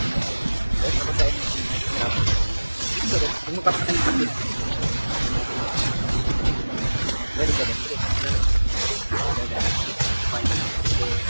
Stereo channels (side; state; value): both; inverted; correlation -1.00